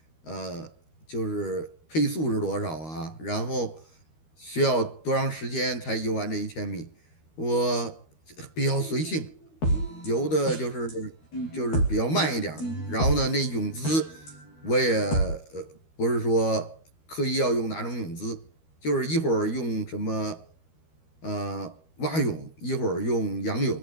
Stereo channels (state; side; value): late; right; 13 ms